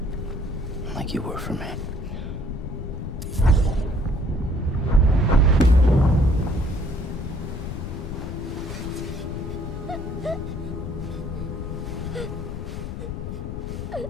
Like you were for me.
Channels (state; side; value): noise; left; rumble, 6 dB below the sound